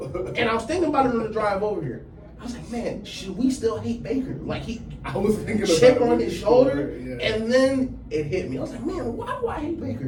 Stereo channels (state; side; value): identical; both; correlation 1.00